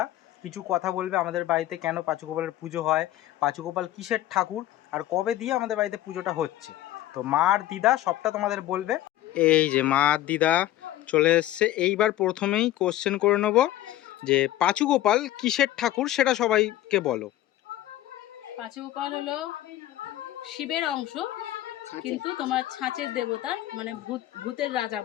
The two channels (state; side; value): quieter; right; 14.3 dB